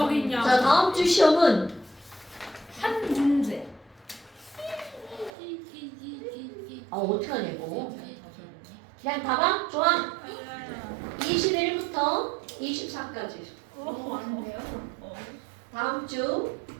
양. 자, 다음 주 시험은 한 문제. 어떻게 하냐 이거. 그냥 봐봐. 좋아. 21부터 24까지. 너무 많은데요? 다음 주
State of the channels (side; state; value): left; drops out; at 5.3 s